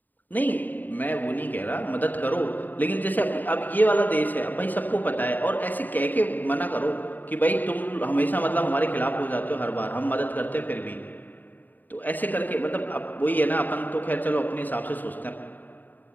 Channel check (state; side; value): late; right; 0.087 ms